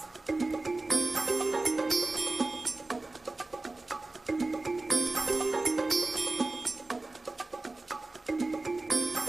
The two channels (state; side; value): quieter; left; 3.2 dB